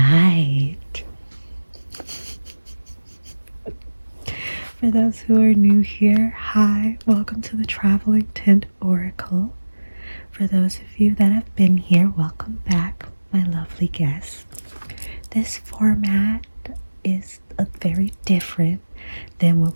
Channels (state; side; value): inverted; both; correlation -1.00